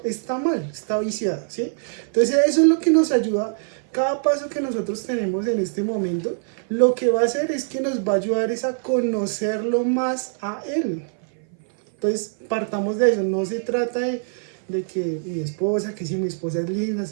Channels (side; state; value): left; silent; 58 dB below the other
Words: está mal, está viciada, ¿sí? Entonces eso es lo que nos ayuda. Cada paso que nosotros tenemos en este momento, lo que va a hacer es que nos va a ayudar es a conocerlo más a Él. Entonces, partamos de eso. No se trata de que mi esposa, que si mi esposa es linda, es